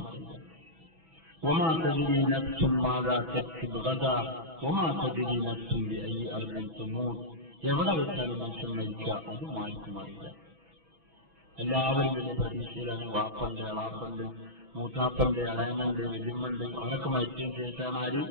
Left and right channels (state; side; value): late; left; 6.1 ms